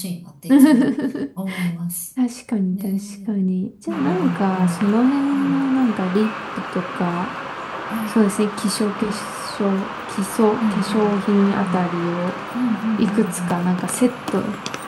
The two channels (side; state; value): both; identical; correlation 1.00